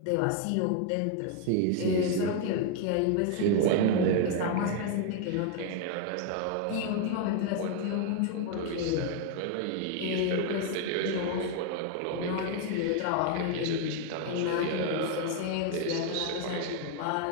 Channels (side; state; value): both; different; correlation 0.01